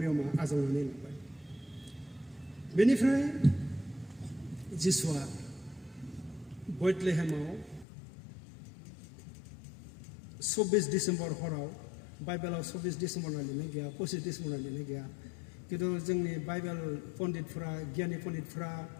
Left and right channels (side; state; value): right; drops out; at 7.9 s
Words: आजावनानै लाबाय बेनिफ्राय जिसुआ बेथलेहेमाव 24 डिसेम्बर हराव बाइबेलाव 24 डिसेम्बर होनना लिरनाय गैया 25 डिसेम्बर होनना लिरनाय गैया खिन्थु जोंनि बाइबेल पण्डितफोरा गियानि पण्डितफोरा